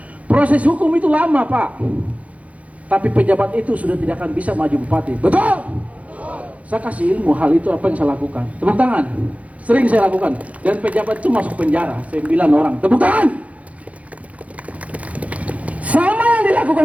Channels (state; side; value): late; left; 0.066 ms